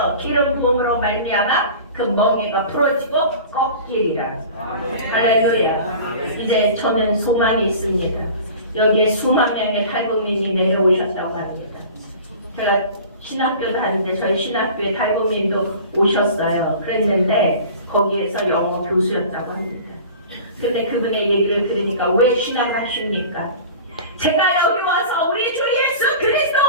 기름 부음으로 말미암아 그 멍에가 풀어지고 꺾이리라. 할렐루야. 이제 저는 소망이 있습니다. 여기에 수만 명의 탈북민이 내려오셨다고 합니다. 제가 신학교도 하는데 저희 신학교에 탈북민도 오셨어요. 그랬는데 거기에서 영어 교수였다고 합니다. 근데 그분의 얘기를 들으니까 왜 신학을 하십니까? 제가 여기 와서 우리 주 예수 그리스도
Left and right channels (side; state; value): both; inverted; correlation -0.40